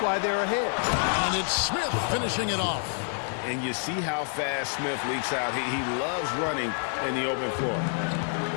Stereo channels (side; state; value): right; silent; 57 dB below the other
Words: they're ahead. And it's Smith finishing it off. And you see how fast Smith leaks out. He loves running in the open floor.